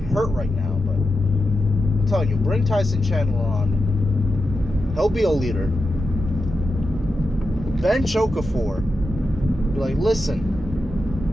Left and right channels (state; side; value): normal; both; correlation 0.89